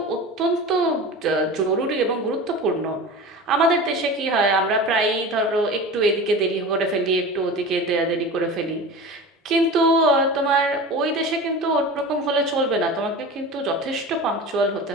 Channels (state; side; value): normal; both; correlation 0.32